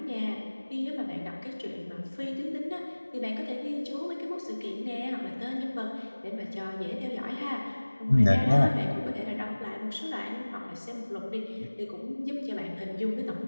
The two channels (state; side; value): inverted; both; correlation -1.00